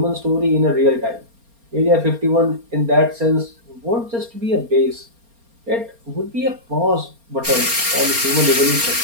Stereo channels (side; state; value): left; late; 4.3 ms